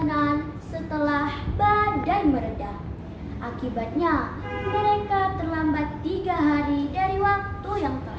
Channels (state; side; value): identical; both; correlation 1.00